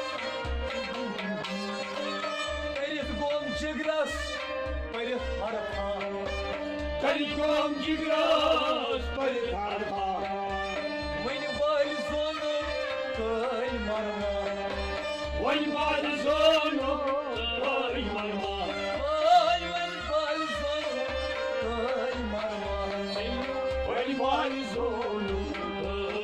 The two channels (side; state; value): both; identical; correlation 1.00